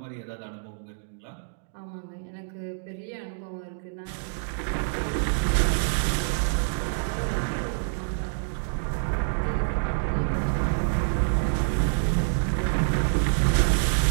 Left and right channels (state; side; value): silent; left; digital silence